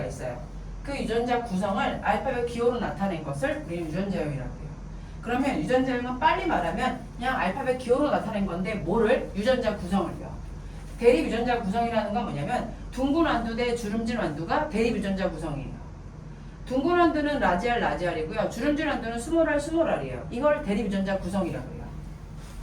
있어요. 그 유전자 구성을 알파벳 기호로 나타낸 것을 우리는 유전자형이라고 해요. 그러면 유전자형은 빨리 말하면 그냥 알파벳 기호로 나타낸 건데 뭐를? 유전자 구성을요. 대립 유전자 구성이라는 건 뭐냐면 둥근 완두 대 주름진 완두가 대립 유전자 구성이에요. 둥근 완두는 라지알 라지알이고요. 주름진 완두는 스몰알 스몰알이에요. 이걸 대립 유전자 구성이라고 해요.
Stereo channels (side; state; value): both; identical; correlation 1.00